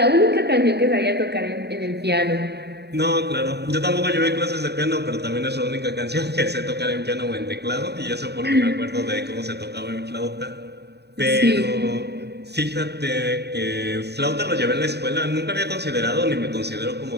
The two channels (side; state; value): left; late; 0.48 ms